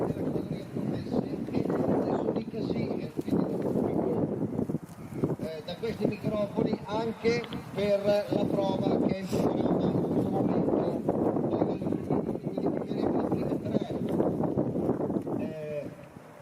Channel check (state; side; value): identical; both; correlation 1.00